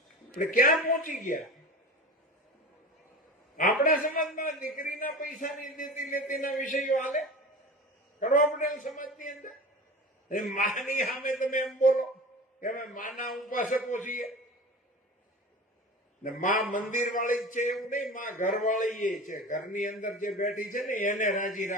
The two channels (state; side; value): normal; both; correlation 0.34